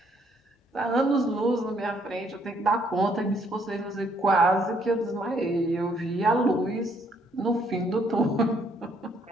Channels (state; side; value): normal; both; correlation 0.69